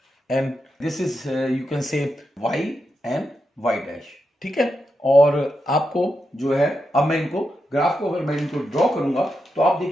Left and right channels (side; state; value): both; normal; correlation 0.86